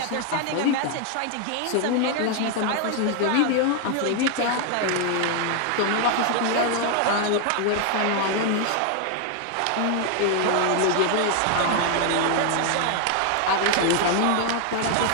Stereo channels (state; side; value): different; both; correlation 0.00